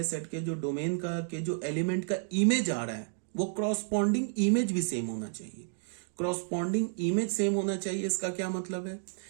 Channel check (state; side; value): silent; left; digital silence